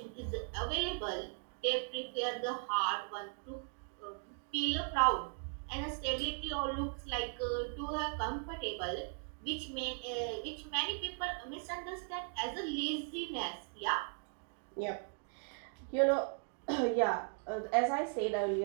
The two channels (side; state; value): left; silent; 52 dB below the other